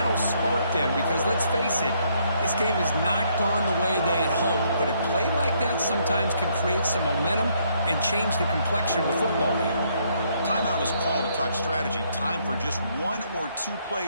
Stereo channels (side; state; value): both; inverted; correlation -0.70